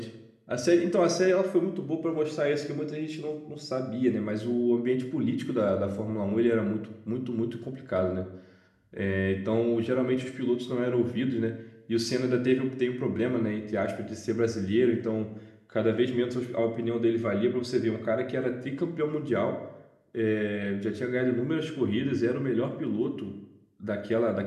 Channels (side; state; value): both; identical; correlation 1.00